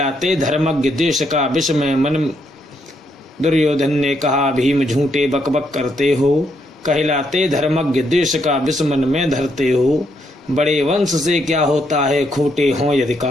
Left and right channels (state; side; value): normal; both; correlation 0.76